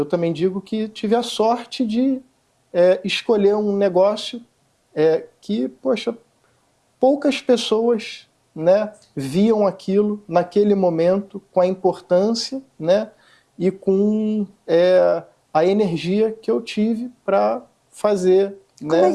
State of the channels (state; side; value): identical; both; correlation 1.00